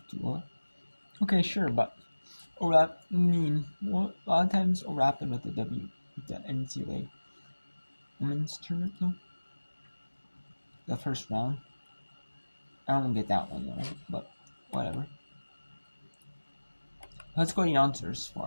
to. Okay, sure, but overlap. A lot of times overlapping with the NCAA women's tournament though. The first round. I don't get that one though, but whatever. Let's go to the answers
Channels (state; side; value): inverted; both; correlation -1.00